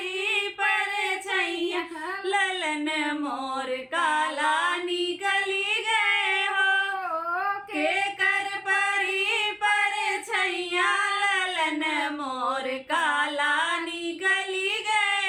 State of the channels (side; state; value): both; identical; correlation 1.00